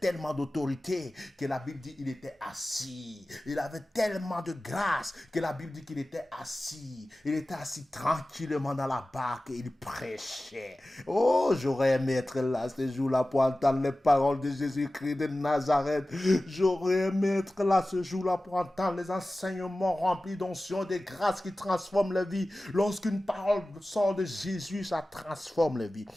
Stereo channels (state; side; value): normal; both; correlation 0.96